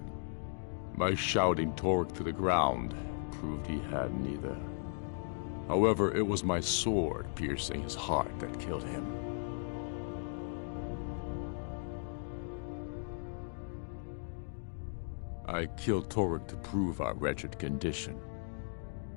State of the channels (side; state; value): right; silent; digital silence